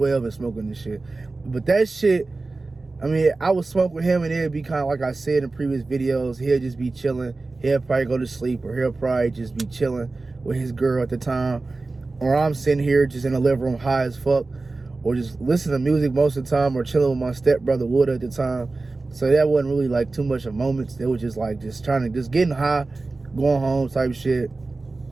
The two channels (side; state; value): left; quieter; 3.5 dB